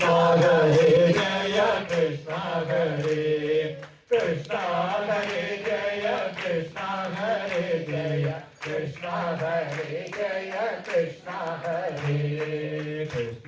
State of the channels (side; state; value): both; identical; correlation 1.00